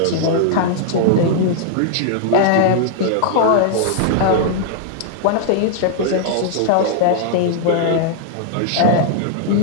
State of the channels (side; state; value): both; different; correlation -0.01